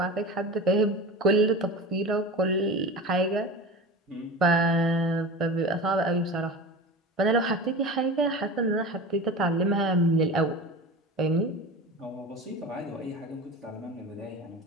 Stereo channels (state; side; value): normal; both; correlation 0.31